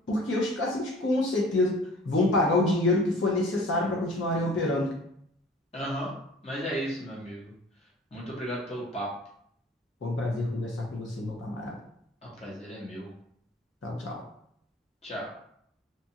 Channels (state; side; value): normal; both; correlation 0.46